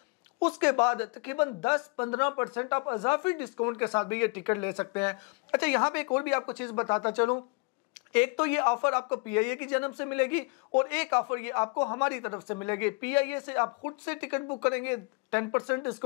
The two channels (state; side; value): quieter; right; 30.9 dB